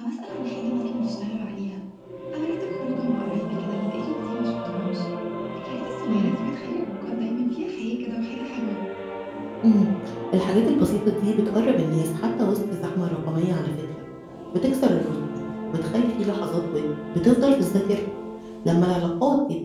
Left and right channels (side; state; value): both; identical; correlation 1.00